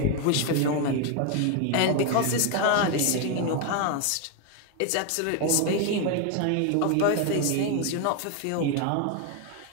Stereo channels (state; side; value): different; both; correlation 0.01